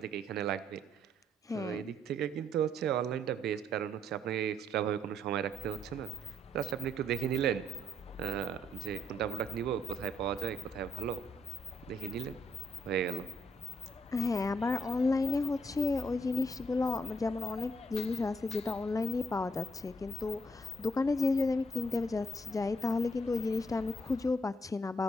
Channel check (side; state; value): both; normal; correlation 0.71